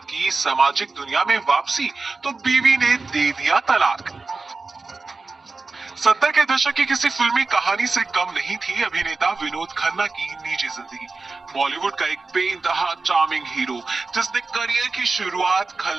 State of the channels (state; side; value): quieter; left; 3.9 dB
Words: की सामाजिक दुनिया में वापसी तो बीवी ने दे दिया तलाक। 70 के दशक की किसी फिल्मी कहानी से कम नहीं थी अभिनेता विनोद खन्ना की निजी जिंदगी। बॉलीवुड का एक बेइंतहा चार्मिंग हीरो जिसने करियर की शुरुआत